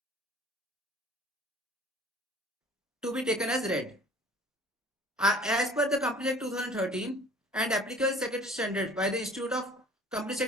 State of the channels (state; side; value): normal; both; correlation 0.49